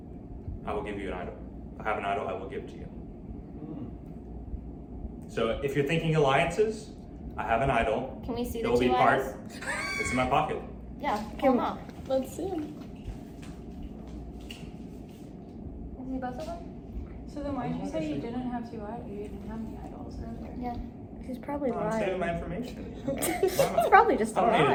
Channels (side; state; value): both; identical; correlation 1.00